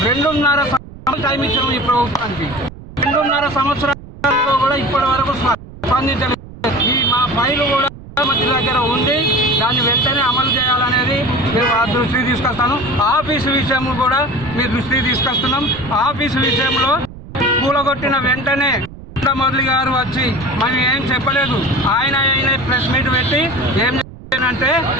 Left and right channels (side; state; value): right; noise; rumble, 16 dB below the sound